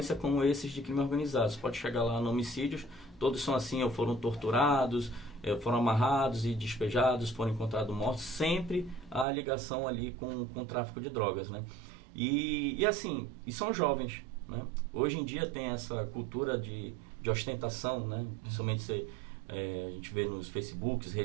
como esses de crime organizado. Você pode chegar lá no homicídios, todos são assim, ou foram torturados, foram amarrados e despejados, foram encontrados mortos. Sempre há ligação ali com o tráfico de drogas, né? E assim, e são jovens, né? Hoje em dia tem essa cultura de ostentação, né? Principalmente a gente vê nos Facebooks,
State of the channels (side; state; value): left; drops out; at 9.2 s